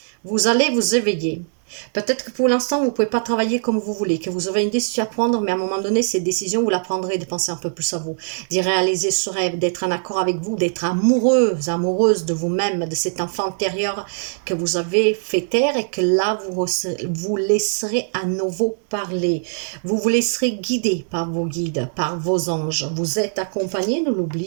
Vous allez vous éveiller. Peut-être que pour l'instant, vous ne pouvez pas travailler comme vous voulez, que vous avez une décision à prendre, mais à un moment donné, cette décision, vous la prendrez de penser un peu plus à vous, d'y réaliser ce rêve, d'être en accord avec vous, d'être amoureuse de vous-même, de cet enfant intérieur que vous avez fait taire et que là, vous laisserez à nouveau parler. Vous vous laisserez guider par vos guides, par vos anges. Vous êtes accompagné, ne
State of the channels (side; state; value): left; silent; digital silence